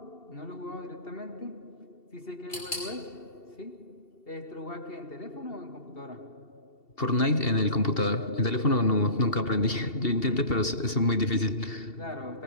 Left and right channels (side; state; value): right; late; 2.7 ms